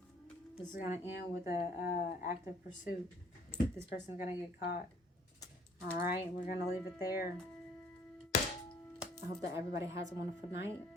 This is going to end with a active pursuit. This person's going to get caught. All right, we're going to leave it there. I hope that everybody has a wonderful night.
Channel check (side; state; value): both; normal; correlation 0.59